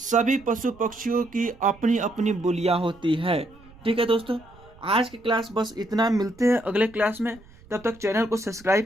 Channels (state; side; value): noise; right; rumble, 24 dB below the sound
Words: पशु पक्षियों की अपनी अपनी बोलियां होती है। ठीक है दोस्तों, आज की क्लास बस इतना, मिलते हैं अगले क्लास में। तब तक चैनल को सब्सक्राइब